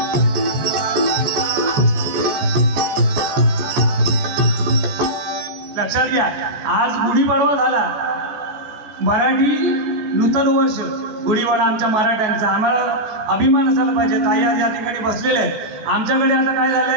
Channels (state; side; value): late; left; 14 ms